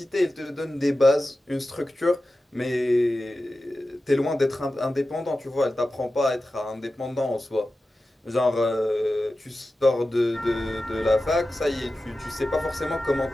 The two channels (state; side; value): normal; both; correlation 0.94